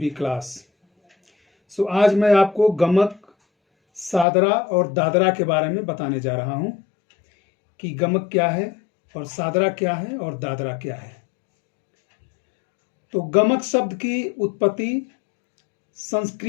class. आज मैं आपको गमक, सादरा और दादरा के बारे में बताने जा रहा हूं कि गमक क्या है और सादरा क्या है और दादरा क्या है। तो गमक शब्द की उत्पत्ति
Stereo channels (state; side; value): drops out; right; at 4.2 s